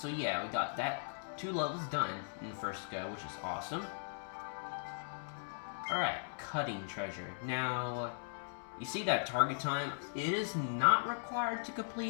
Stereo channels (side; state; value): right; silent; digital silence